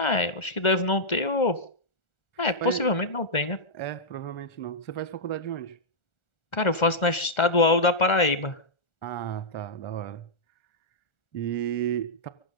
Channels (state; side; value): late; right; 1.4 ms